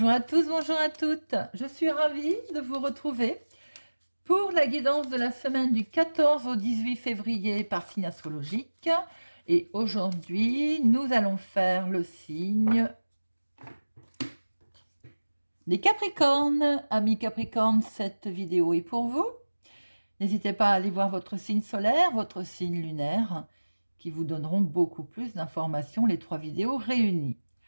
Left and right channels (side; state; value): both; inverted; correlation -1.00